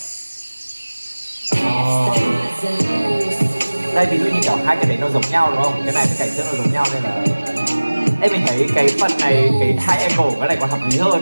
Đây ví dụ như kiểu hai cái đấy nó giống nhau đúng không? Cái này cái cảnh trước nó giống nhau nên là em mình thấy cái phần này, cái hai angle của cái này còn hợp lý hơn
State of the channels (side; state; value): both; inverted; correlation -1.00